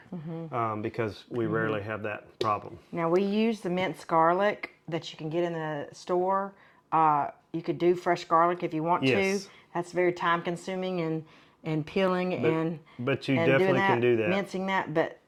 because we rarely have that problem. Now we use the minced garlic that you can get in the store. You could do fresh garlic if you want to. That's very time consuming and peeling but you and definitely doing that, can do that. mincing that, but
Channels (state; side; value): identical; both; correlation 1.00